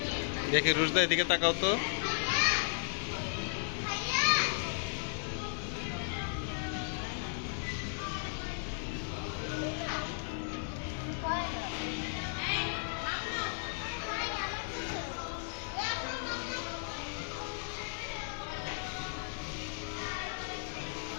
দেখি রুশদা এদিকে তাকাও তো,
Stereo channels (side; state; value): right; silent; digital silence